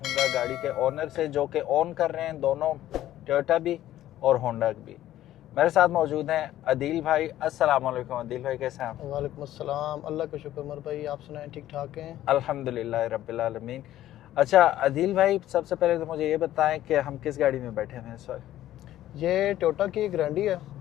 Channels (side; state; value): right; quieter; 13.4 dB